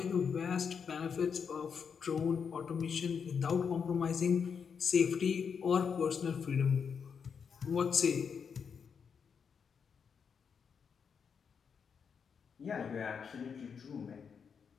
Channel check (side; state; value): right; quieter; 6.5 dB